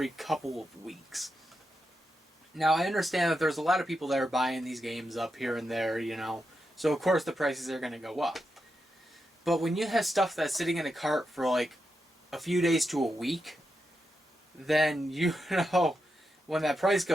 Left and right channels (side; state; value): both; normal; correlation 0.86